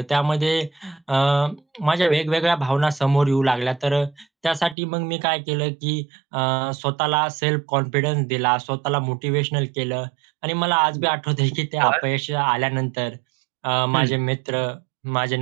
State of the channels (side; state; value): left; drops out; at 4.8 s